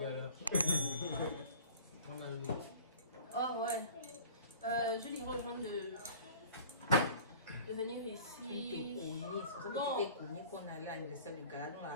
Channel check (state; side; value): inverted; both; correlation -0.45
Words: là. On a une. Oh ouais. Je lui rejoins de venir Tu te ici. connais. C'est pour ça que Bon. tu t'es connu qu'on allait à l'anniversaire du gala dans